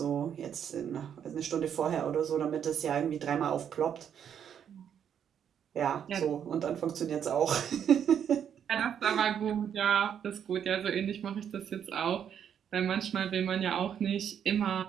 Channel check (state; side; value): quieter; left; 8.6 dB